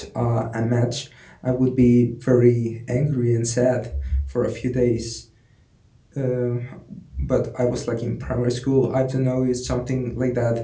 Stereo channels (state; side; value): identical; both; correlation 1.00